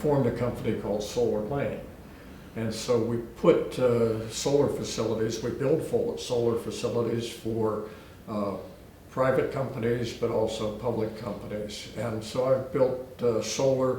a company called Solar Lane. And so we put solar facilities, we build solar facilities for private companies, but also public companies. And so I've built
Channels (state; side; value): identical; both; correlation 1.00